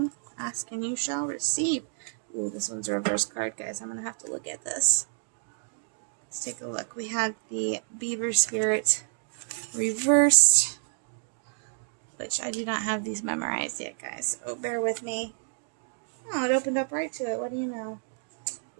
Ask and you shall receive. Ooh, this one's a reverse card, guys. I'm gonna have to look at this. Let's take a look. We had the beaver spirit reversed, which I do not have these memorized yet, guys. So bear with me. Oh, it opened up right to it. What do you know?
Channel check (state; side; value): silent; left; digital silence